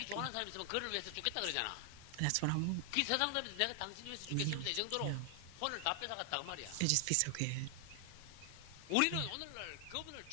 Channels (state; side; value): different; both; correlation 0.00